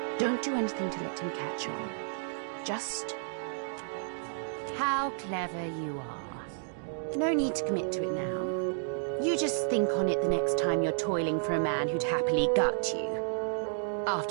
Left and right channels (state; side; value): silent; left; digital silence